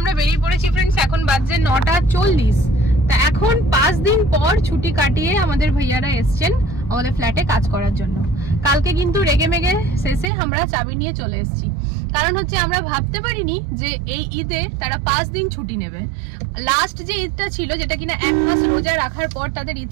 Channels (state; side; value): drops out; left; at 10.2 s